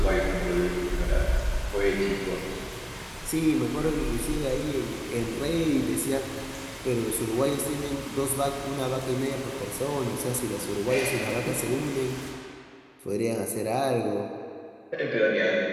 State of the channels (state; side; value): identical; both; correlation 1.00